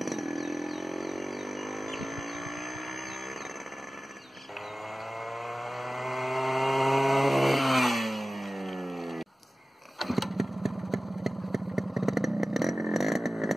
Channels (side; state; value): both; normal; correlation 0.96